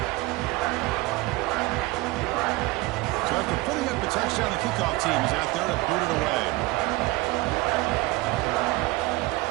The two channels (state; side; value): quieter; left; 21.3 dB